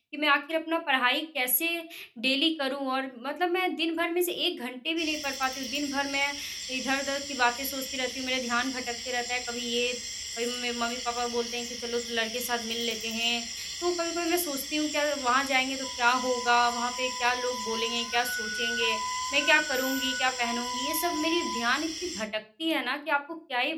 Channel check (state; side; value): identical; both; correlation 1.00